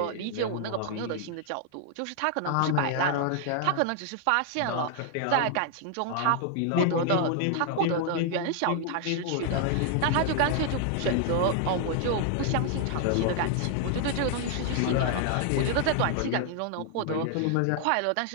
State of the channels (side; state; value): both; different; correlation 0.00